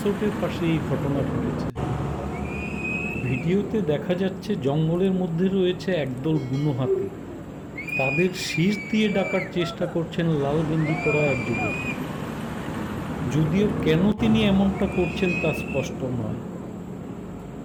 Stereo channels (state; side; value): identical; both; correlation 1.00